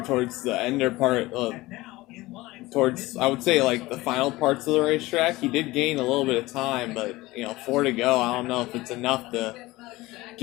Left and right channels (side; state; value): right; quieter; 19.5 dB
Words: the ender part. Towards, I would say, like the final parts of the racetrack. He did gain a little bit of time, but 4 to go. I don't know if it's enough to